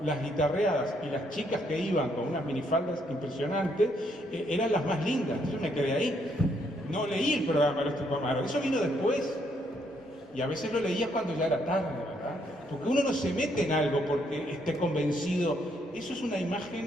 las guitarreadas y las chicas que iban con unas minifaldas impresionantes eran las más lindas. Yo me quedé ahí. No leí el programa de Tupamaro. Eso vino después. Y a veces lo leía cuando ya era tarde, ¿verdad? Porque uno no se mete en algo porque esté convencido. Eso es una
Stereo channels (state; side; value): normal; both; correlation 0.72